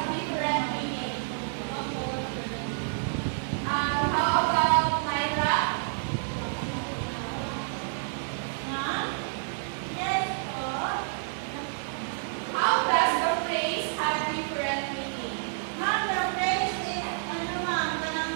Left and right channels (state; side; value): silent; left; digital silence